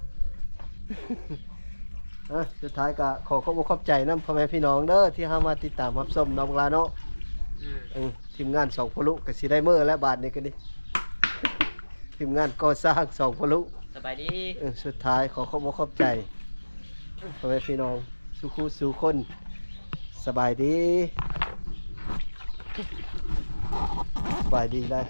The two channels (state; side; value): inverted; both; correlation -1.00